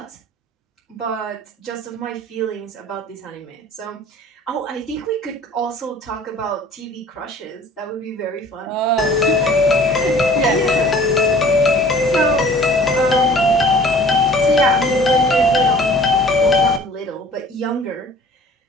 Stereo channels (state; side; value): normal; both; correlation 0.49